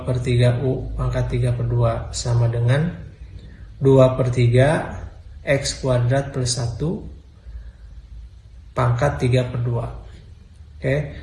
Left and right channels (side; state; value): both; identical; correlation 1.00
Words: per 3 U pangkat 3 per 2 sama dengan 2 per 3 X kuadrat plus 1 pangkat 3 per 2. Oke.